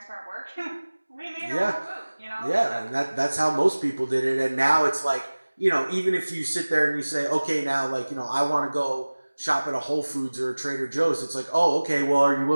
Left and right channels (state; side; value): inverted; both; correlation -1.00